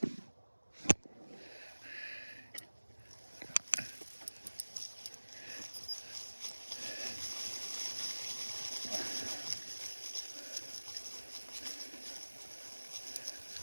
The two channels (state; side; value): inverted; both; correlation -1.00